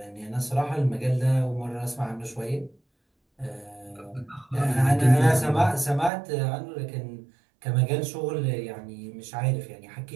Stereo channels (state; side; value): drops out; left; at 6.1 s